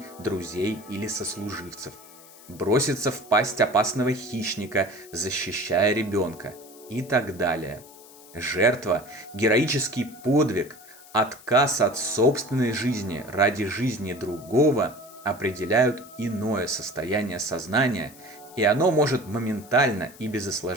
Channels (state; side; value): noise; left; hiss, 21 dB below the sound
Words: друзей или сослуживцев, броситься в пасть опасного хищника, защищая ребенка и так далее. Жертва, героический подвиг, отказ от собственной жизни ради жизни другого определяют иное состояние сознания, и оно может моментально и без